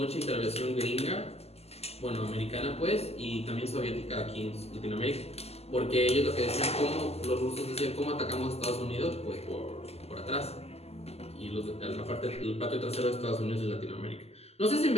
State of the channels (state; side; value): late; right; 0.30 ms